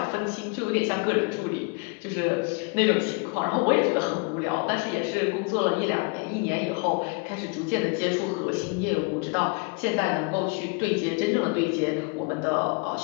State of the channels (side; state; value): right; quieter; 32.8 dB